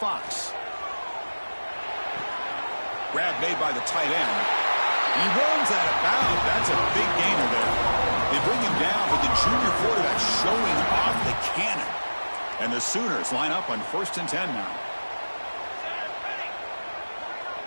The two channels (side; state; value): both; inverted; correlation -1.00